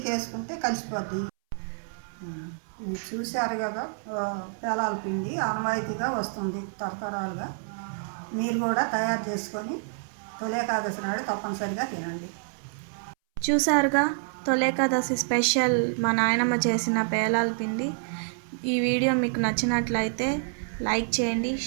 వేసుకుంటే కలిసిపోద్ది. ఇది చూశారు కదా, పేలాల పిండి ఆనవాయితీగా వస్తుంది తరతరాలుగా. మీరు కూడా తయారు చేసుకొని తొలి ఏకాదశి నాడు తప్పనిసరిగా తినండి. చూసారుగా, తొలి ఏకాదశి స్పెషల్ మా నాయనమ్మ చేసిన పేలాల పిండి. ఈ వీడియో మీకు నచ్చినట్లయితే లైక్ చేయండి,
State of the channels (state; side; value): silent; left; 60 dB below the other